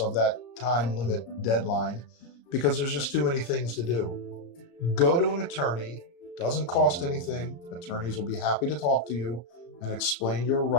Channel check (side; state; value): right; late; 34 ms